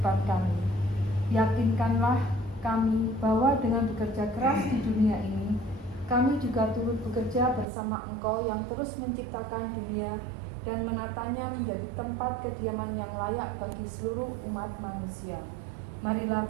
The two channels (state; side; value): drops out; left; at 7.7 s